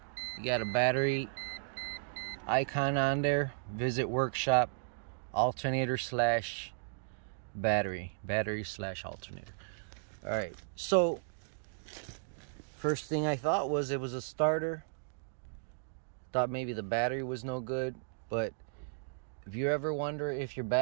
You got a battery icon on there. Visit workshop, alternator slash battery slash alternator. All right, so first thing I thought was it was a starter. Thought maybe the battery was no good. But if you ever wonder if your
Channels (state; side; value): silent; left; digital silence